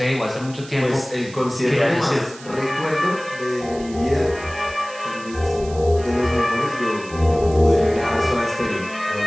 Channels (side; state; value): right; noise; hiss, 19 dB below the sound